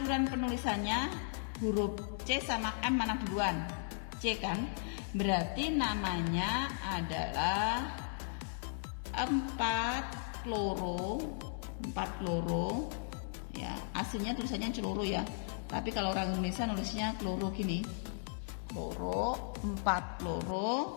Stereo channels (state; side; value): silent; right; 54 dB below the other